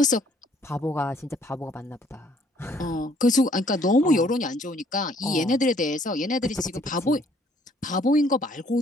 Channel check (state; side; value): normal; both; correlation 0.63